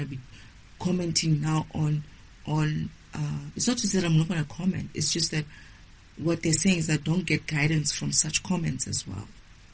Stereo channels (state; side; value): identical; both; correlation 1.00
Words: be commenting now on it's not just that I'm not going to comment. It's just that what they're saying is that don't get guidance from such comments as well.